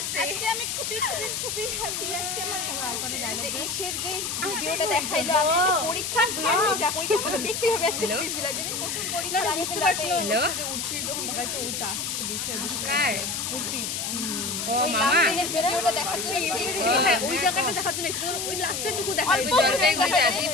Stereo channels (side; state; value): left; noise; hiss, 3 dB below the sound